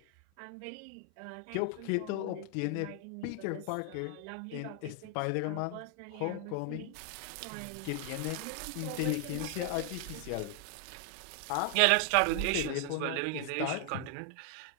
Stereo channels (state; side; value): different; both; correlation 0.00